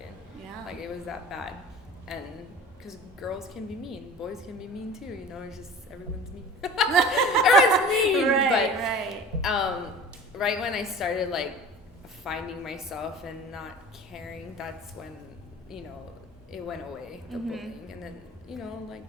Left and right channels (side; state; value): both; normal; correlation 0.40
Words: Yeah. Like it was that bad. And because girls can be mean, boys can be mean too, it's just everyone's mean. Everyone's mean. Right. Right when I started like finding myself and not caring, that's when, it went away, the bullying. And then, like